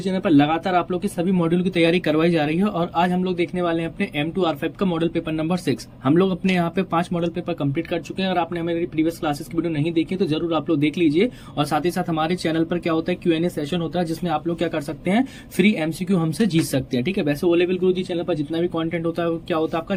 चैनल पर लगातार आप लोग के सभी मॉड्यूल की तैयारी करवाई जा रही है और आज हम लोग देखने वाले हैं अपने M2R5 का मॉडल पेपर नंबर 6। हम लोग अपने यहाँ पे 5 मॉडल पेपर कंप्लीट कर चुके हैं और आपने हमारी प्रीवियस क्लासेस की वीडियो नहीं देखी तो जरूर आप लोग देख लीजिए। और साथ ही साथ हमारे चैनल पर क्या होता है, Q&A सेशन होता है जिसमें आप लोग क्या कर सकते हैं, फ्री MCQ हमसे जीत सकते हैं। ठीक है, वैसे ओ लेवल गुरुजी चैनल पर जितना भी कॉन्टेंट होता है क्या होता है आपका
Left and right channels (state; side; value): identical; both; correlation 1.00